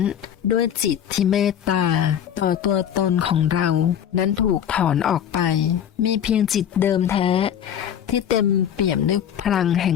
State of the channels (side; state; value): right; quieter; 9.4 dB